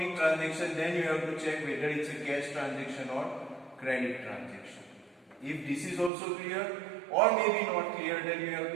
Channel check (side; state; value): left; drops out; at 6.1 s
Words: transaction, then you have to check whether it's a cash transaction or credit transaction. If this is also clear or maybe not clear, then you have